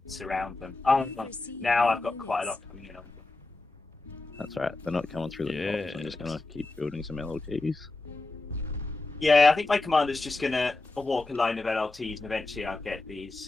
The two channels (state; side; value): quieter; right; 3.2 dB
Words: surround them. Now I've got quite a lot coming in on them. That's right. They're not coming through the top, so I'm just gonna keep building some LLTs. Yeah, I think my commander's just gonna walk a line of LLTs, and eventually I'll get